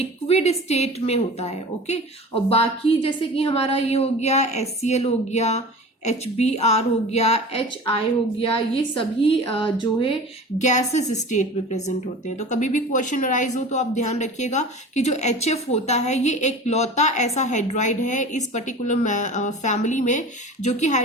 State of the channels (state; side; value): normal; both; correlation 0.37